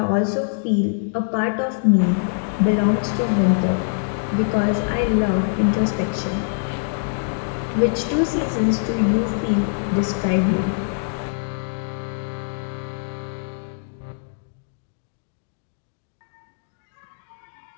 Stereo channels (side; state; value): right; silent; digital silence